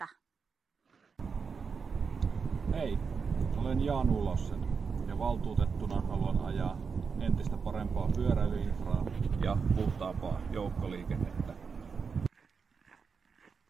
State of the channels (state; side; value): quieter; left; 5.5 dB